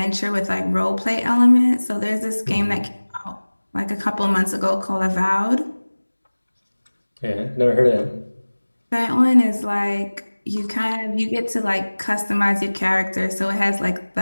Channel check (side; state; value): both; inverted; correlation -1.00